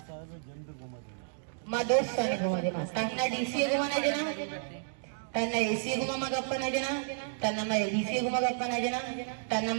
माँ दोस्त का नहीं घुमा देना तन्ना डीसी घुमाना जना तन्ना एसी घुमा मगप्पना जना तन्ना मैं एडीसी घुमा गप्पना जना तन्ना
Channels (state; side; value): silent; left; digital silence